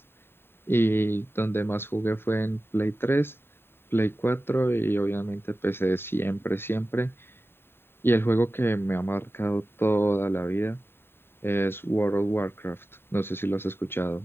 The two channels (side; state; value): right; late; 0.11 ms